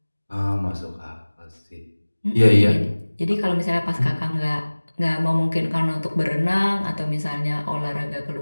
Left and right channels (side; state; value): both; inverted; correlation -1.00